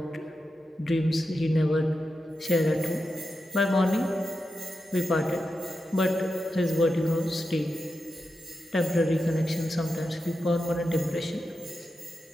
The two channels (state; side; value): normal; both; correlation 0.89